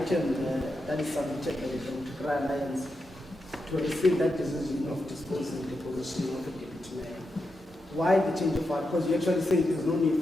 that is submitted by the Patriotic Alliance to receive that decision of disposing the position of the deputy mayor. Why the change of heart? Because you actually say there's no need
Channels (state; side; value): normal; both; correlation 0.87